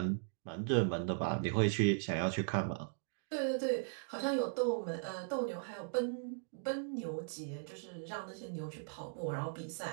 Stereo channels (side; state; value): left; silent; digital silence